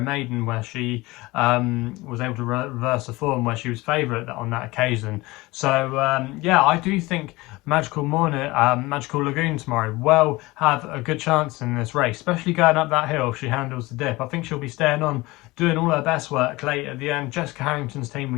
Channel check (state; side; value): quieter; right; 21.2 dB